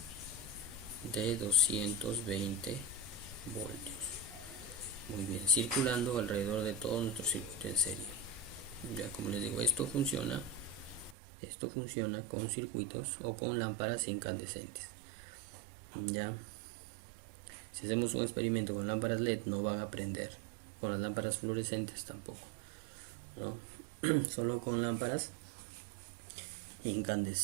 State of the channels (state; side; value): drops out; left; at 11.2 s